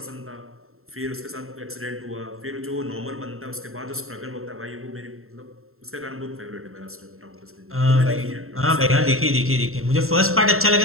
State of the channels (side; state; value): left; late; 0.62 ms